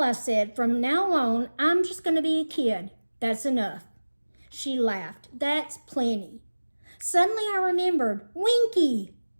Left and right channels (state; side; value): inverted; both; correlation -1.00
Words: I said, from now on, I'm just going to be a kid. That's enough. She laughed. That's plenty. Suddenly I remembered. Winky!